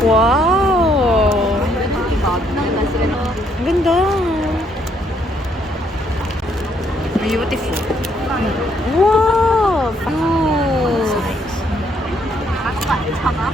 Wow! Ang ganda. Beautiful. Wow!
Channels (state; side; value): normal; both; correlation 0.70